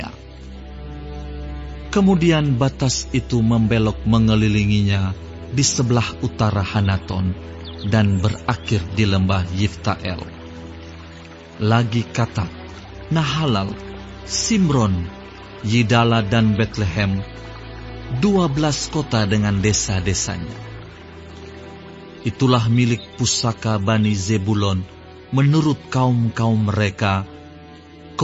Kemudian batas itu membelok mengelilinginya di sebelah utara Hanaton, dan berakhir di lembah Yiftael. Lagi Katak, Nahalal, Simron, Yidala dan Betlehem, 12 kota dengan desa-desanya. Itulah milik pusaka Bani Zebulon menurut kaum-kaum mereka,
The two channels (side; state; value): both; identical; correlation 1.00